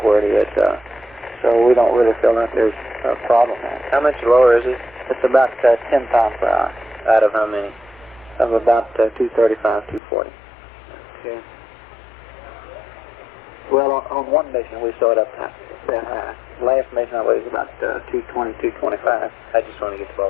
where it is. So we don't really feel like there's a problem there. How much lower is it? It's about 10 pounds per hour. Out of how many? Of about 235, 240. Okay. Well, on one mission we saw it up that high. Last mission I believe was about 220, 225. I just want to get the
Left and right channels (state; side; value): drops out; right; at 10.0 s